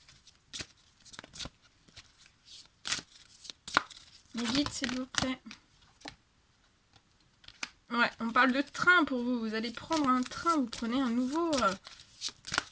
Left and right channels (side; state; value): both; identical; correlation 1.00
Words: Mais vite, s'il vous plaît. Ouais, on parle de train pour vous. Vous allez prendre un train, vous prenez un nouveau